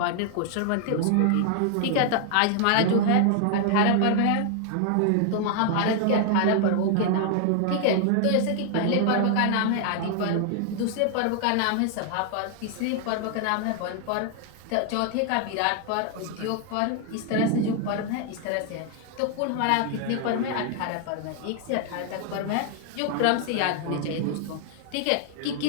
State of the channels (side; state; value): both; different; correlation 0.00